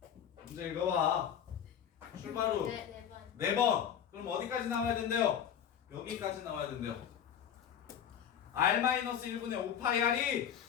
문제 읽어봐. 출발 후 네 번. 그럼 어디까지 나와야 된대요? 여기까지 나와야 된대요. R-1분의 5파이 R이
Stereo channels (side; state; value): right; quieter; 8.9 dB